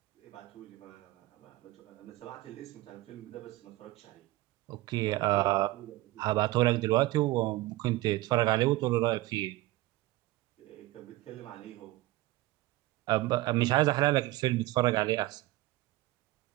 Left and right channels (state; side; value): quieter; left; 18.2 dB